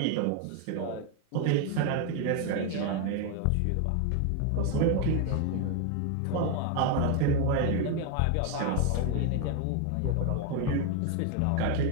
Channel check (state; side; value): different; both; correlation 0.01